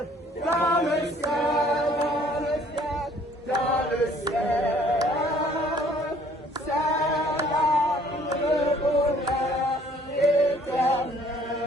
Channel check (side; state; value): both; normal; correlation 0.58